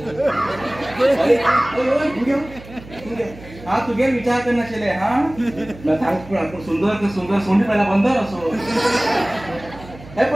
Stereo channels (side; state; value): right; noise; hum, 18 dB below the sound